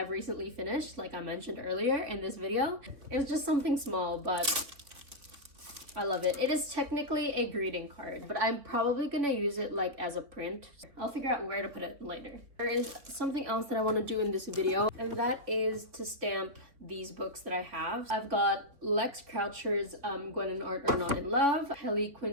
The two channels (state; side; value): late; left; 3.8 ms